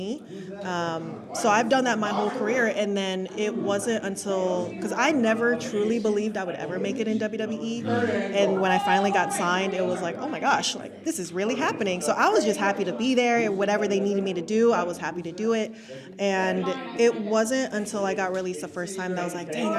So I've done that my whole career, and then it wasn't until, because I never truly believed I would ever make it in WWE, and when I finally got signed, it was like, oh my gosh, like, this is really happening. So I was just happy to be there. Whatever they needed me to do, I was happy to do it. And it wasn't until I got released the first time that I was like, dang,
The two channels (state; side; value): identical; both; correlation 1.00